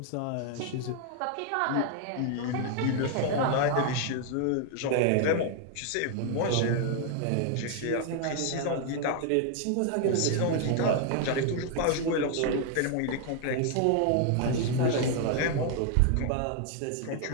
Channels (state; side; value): different; both; correlation 0.00